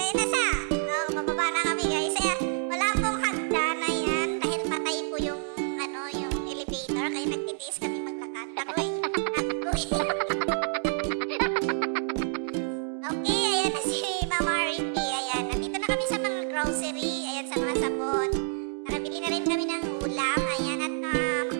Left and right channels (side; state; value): left; silent; digital silence